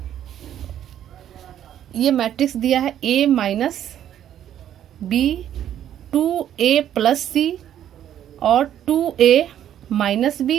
ये मैट्रिक्स दिया है a minus B, 2a plus C और 2a minus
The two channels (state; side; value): quieter; left; 10.7 dB